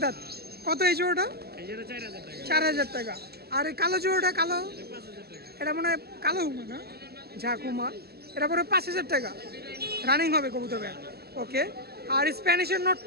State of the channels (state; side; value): late; left; 0.46 ms